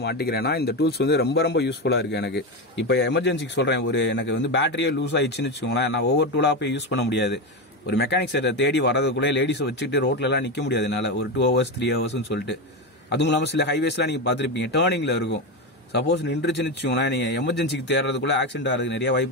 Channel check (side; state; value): both; normal; correlation 0.15